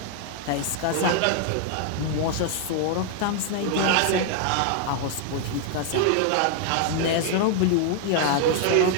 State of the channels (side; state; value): both; different; correlation 0.00